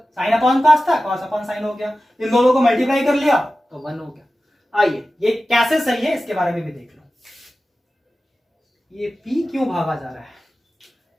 sin अपॉन cos था, cos अपॉन sin हो गया। इन दोनों को मल्टीप्लाई कर लिया तो 1 हो गया। आइए ये कैसे सही है इसके बारे में भी देख लो। ये p क्यों भागा जा रहा है?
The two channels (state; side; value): normal; both; correlation 0.95